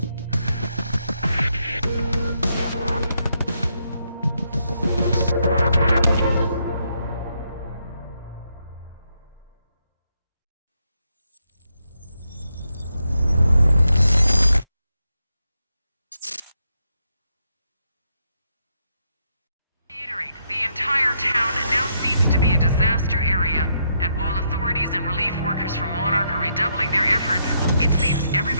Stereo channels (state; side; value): inverted; both; correlation -0.78